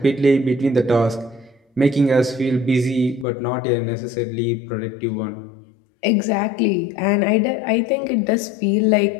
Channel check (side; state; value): right; drops out; at 3.2 s